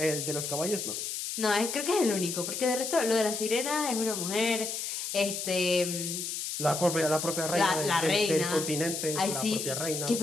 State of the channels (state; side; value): noise; left; hiss, 4 dB below the sound